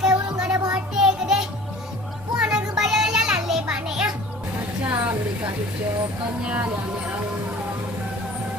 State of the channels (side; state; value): both; normal; correlation 0.45